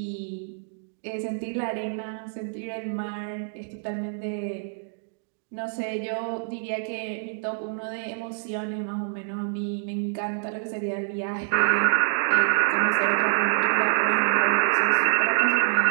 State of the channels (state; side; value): silent; left; 61 dB below the other